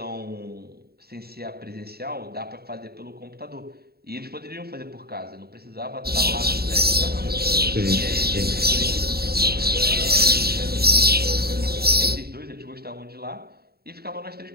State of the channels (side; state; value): left; late; 0.45 ms